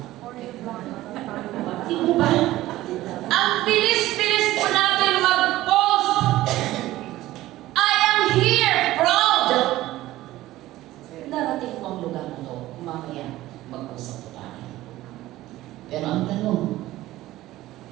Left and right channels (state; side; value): quieter; left; 16.1 dB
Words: Di mo ba? Ang bilis-bilis po natin mag-post. I am here, proud. Narating po ang lugar na ito. Mamaya, mag-usap po tayo. Pero ang tanong,